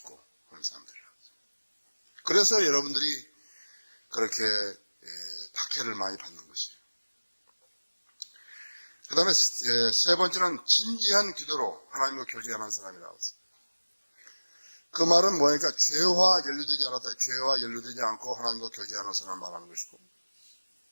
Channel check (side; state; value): both; inverted; correlation -1.00